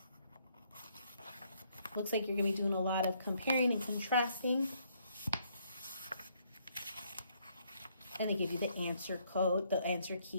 Looks like you're going to be doing a lot of comparing and contrasting. And they give you the answer code, the answer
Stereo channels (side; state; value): both; inverted; correlation -0.70